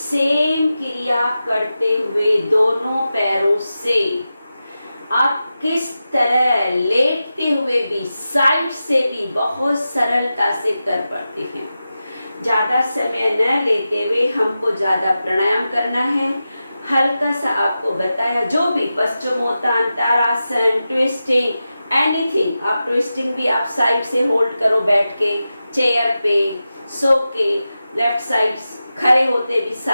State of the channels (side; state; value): both; inverted; correlation -0.92